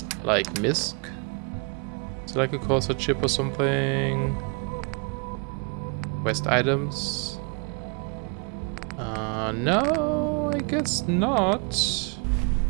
Like MISC? Is it like a Corsair chip or something? Quest items? No, I guess not.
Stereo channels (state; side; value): quieter; left; 34.7 dB